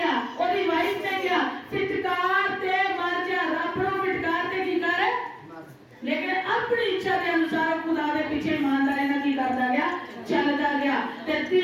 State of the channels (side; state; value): both; identical; correlation 1.00